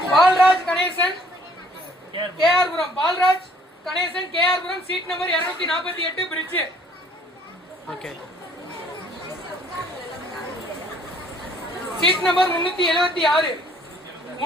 Palraj Ganesan KR Puram. Palraj Ganesan KR Puram. Seat number 248 fridge. Okay. Seat number 376.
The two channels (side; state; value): both; normal; correlation 0.59